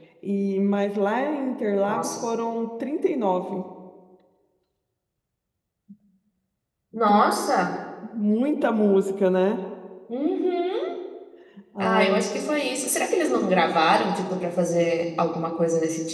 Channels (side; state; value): both; identical; correlation 1.00